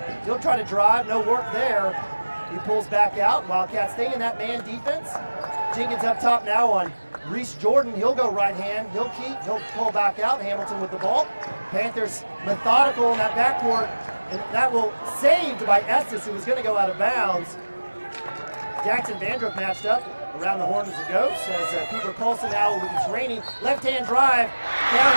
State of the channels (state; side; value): inverted; both; correlation -1.00